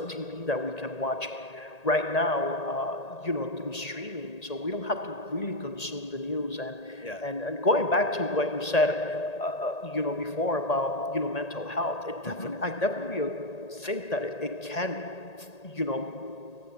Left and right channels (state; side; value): late; right; 1.8 ms